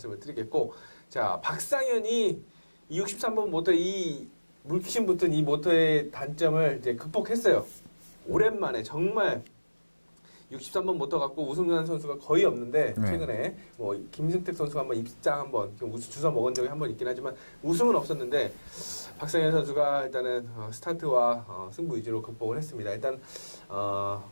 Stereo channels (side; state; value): both; inverted; correlation -1.00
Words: 드리겠고 자 박상현이 63번 모터 이 물귀신 붙은 이 모터의 단점을 이제 극복했어요. 오랜만에 정말 63번 모터 갖고 우승한 선수가 거의 없는데 최근에 뭐 김승택 선수가 한번 입장 한번 주워 먹은 적이 한번 있긴 하지만 우승은 없었는데 박상현 선수가 일단은 스타트와 승부 위주로 극복을 했습니다. 일단